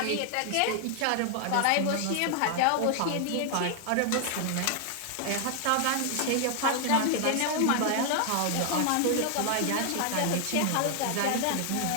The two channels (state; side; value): different; both; correlation 0.00